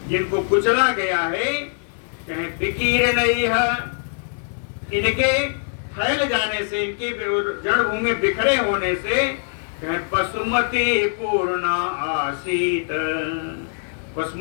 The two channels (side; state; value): right; silent; 64 dB below the other